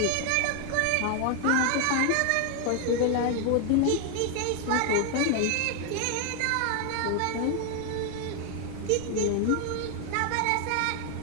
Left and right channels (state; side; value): different; both; correlation 0.00